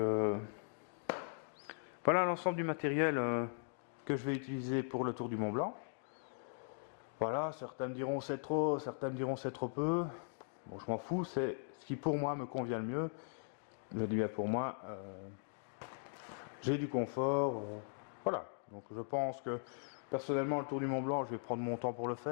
voilà l'ensemble du matériel que je vais utiliser pour le Tour du Mont Blanc. Voilà, certains me diront c'est trop, certains me diront c'est trop peu. Bon, je m'en fous, c'est ce qui pour moi me convient le mieux. Je dis bien pour moi, j'ai du confort. Voilà, donc je pense que personnellement le Tour du Mont Blanc, je vais prendre mon temps pour le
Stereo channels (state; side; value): silent; right; digital silence